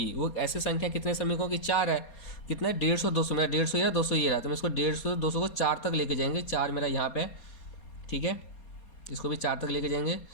वो ऐसे संख्या कितने श्रमिकों की 4 है। कितना है 150, 200। मेरा 150 ये रहा, 200 ये रहा, तो मैं इसको 150, 200 को 4 तक लेके जाएंगे। 4 मेरा यहाँ पे, ठीक है, इसको भी 4 तक लेके जाएंगे,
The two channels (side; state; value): right; late; 4.3 ms